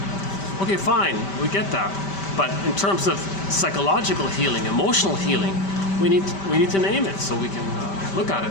Okay, fine, we get that. But in terms of psychological healing, emotional healing, we need to name it so we can look at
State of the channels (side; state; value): right; late; 5.1 ms